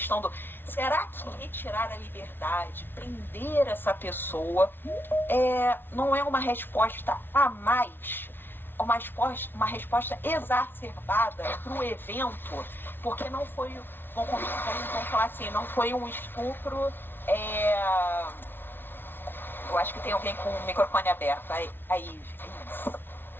do será que retirar a liberdade, prender essa pessoa, não é uma resposta a mais, uma resposta exacerbada para o evento, porque não foi, vamos falar assim, não foi um estupro, eu acho que tem alguém com o microfone aberto, aí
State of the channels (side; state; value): right; late; 0.10 ms